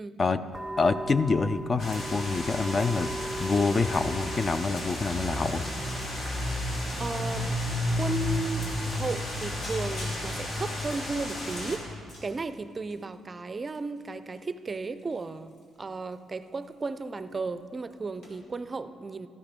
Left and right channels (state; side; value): normal; both; correlation 0.83